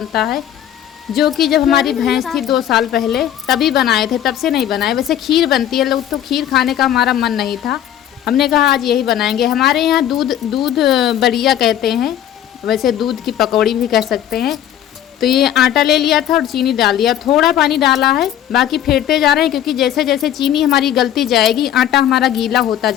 है। जो कि जब हमारी भैंस थी 2 साल पहले तभी बनाए थे, तब से नहीं बनाए। वैसे खीर बनती है, लोग तो खीर खाने का हमारा मन नहीं था, हमने कहा आज यही बनाएंगे। हमारे यहाँ दूध बड़िया कहते हैं, वैसे दूध की पकौड़ी भी कह सकते हैं। तो ये आटा ले लिया था और चीनी डाल दिया, थोड़ा पानी डाला है, बाकी फेंटते जा रहे हैं, क्योंकि जैसे जैसे चीनी हमारी गलती जाएगी आटा हमारा गीला होता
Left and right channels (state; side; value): quieter; right; 11.0 dB